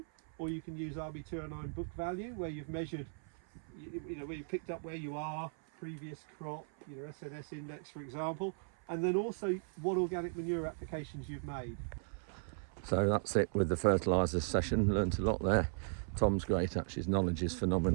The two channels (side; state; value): left; silent; 53 dB below the other